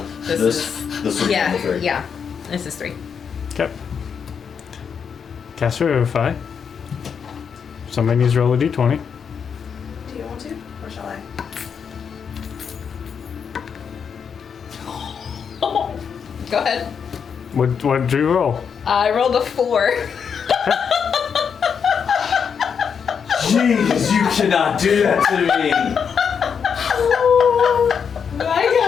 this is this would be yeah, the 3. yeah. This is 3. Okay. Cast Revivify. Somebody needs to roll a d20. Do you want to? Or shall I? Go ahead. What did you roll? I rolled a 4. Jeez, you cannot do that to me. Oh my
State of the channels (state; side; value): quieter; right; 6.8 dB